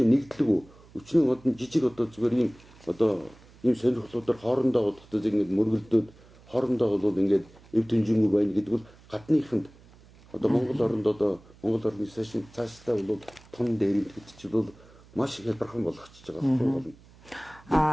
нэгдлэг өчнөө одон жижиг одоо зүгээр ийм одоо ийм сонирхлуудаар хоорондоо бодохтой ингэж мөргөлдөөд хоорондоо бол ингээд эв дэнжингүй байна гэдэг бол гадныханд одоо Монгол оронд одоо Монгол орны цаашдаа бол тун дээр гэдэг чинь бол маш их хялбархан болгочихж байгаа байхгүй юу?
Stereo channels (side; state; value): right; noise; hum, 25 dB below the sound